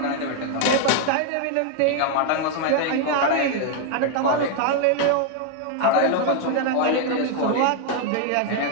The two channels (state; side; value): different; both; correlation 0.00